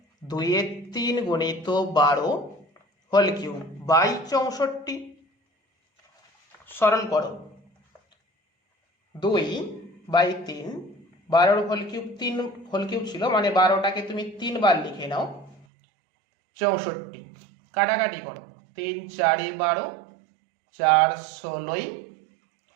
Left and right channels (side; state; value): left; drops out; at 15.7 s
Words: 2/3 গুণিত 12 হোল কিউব বাই 64। সরল করো। 2/3, 12 হোল কিউব 3 হোল কিউব ছিল, মানে 12টাকে তুমি 3 বার লিখে নাও। 64 কাটাকাটি করো। 3 × 4 = 12, 4 × 16,